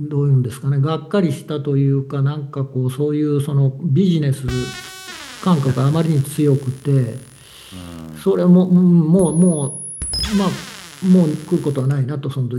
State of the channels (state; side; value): identical; both; correlation 1.00